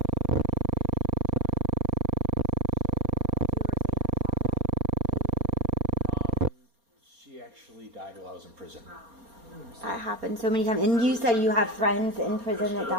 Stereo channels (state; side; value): late; left; 4.3 ms